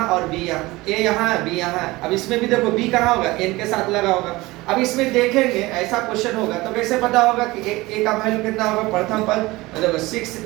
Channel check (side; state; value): left; quieter; 20.6 dB